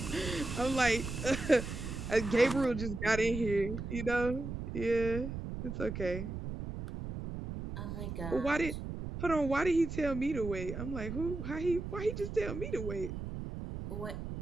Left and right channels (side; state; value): right; noise; rumble, 6 dB below the sound